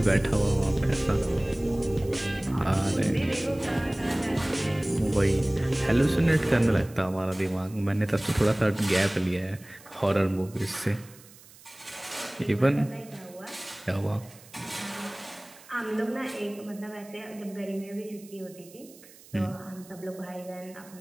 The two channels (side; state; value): right; noise; hiss, 22 dB below the sound